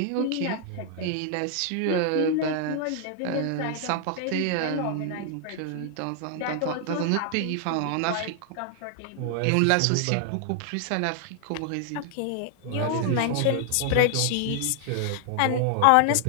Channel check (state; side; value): different; both; correlation 0.00